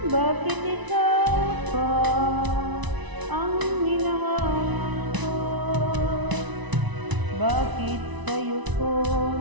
Bakit ikaw pa ang hinahanap ko? Bakit sa'yo ko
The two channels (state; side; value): late; left; 1.0 ms